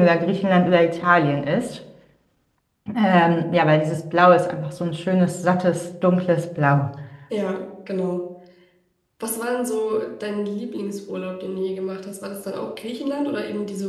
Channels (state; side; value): identical; both; correlation 1.00